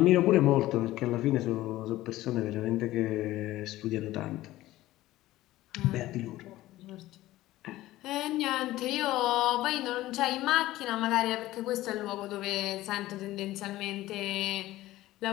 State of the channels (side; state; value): right; quieter; 16.2 dB